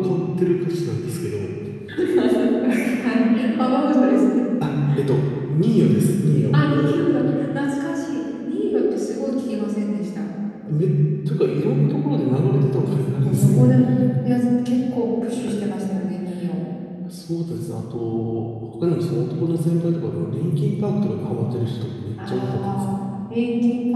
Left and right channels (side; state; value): both; identical; correlation 1.00